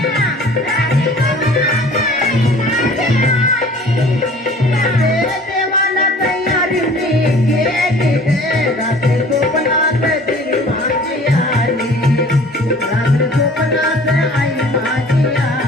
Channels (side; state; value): both; normal; correlation 0.48